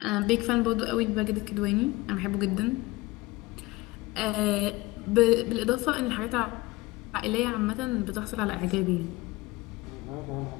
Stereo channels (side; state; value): right; quieter; 20.8 dB